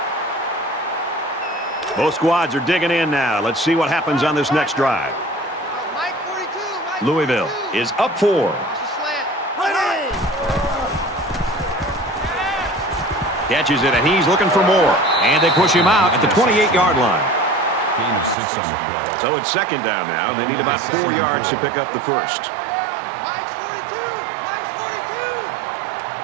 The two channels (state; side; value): drops out; left; at 18.4 s